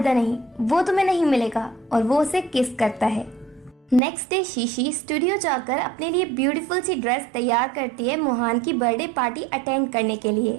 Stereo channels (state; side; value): drops out; left; at 4.0 s